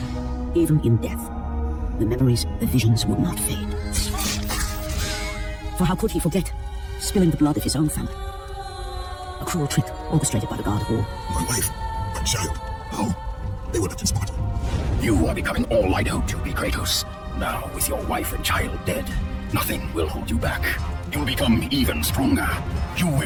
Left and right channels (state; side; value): identical; both; correlation 1.00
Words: Even in death, the memories, the visions would not fade. For how could he forget spilling the blood of his own family? A cruel trick orchestrated by the god of war. My wife, my child, how? They were left in Sparta. You are becoming all I know to be, Kratos. Now, with your wife and child dead, nothing will hold you back. You'll become even stronger. You